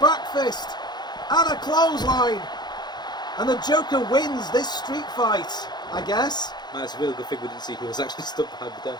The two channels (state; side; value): late; right; 0.21 ms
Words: fist, and a clothesline. And the Joker wins this street fight, I guess. That's a really good thing we didn't see who was actually stuck behind the